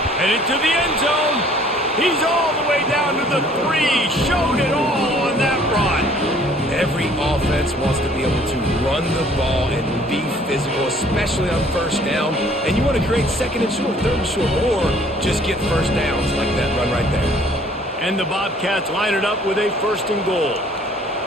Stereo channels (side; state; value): both; normal; correlation 0.57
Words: And into the end zone. He's all the way down to the 3. Showed it all on that run. Every offense wants to be able to run the ball and be physical, especially on first down. And you want to create 2nd and short, 3rd and short, or just get first downs like that run right there. And the Bobcats line it up with a 1st and goal.